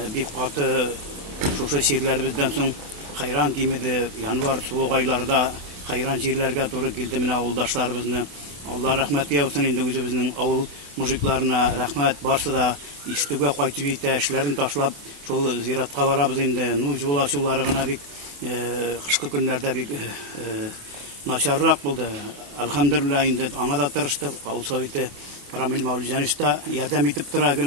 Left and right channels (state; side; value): late; left; 28 ms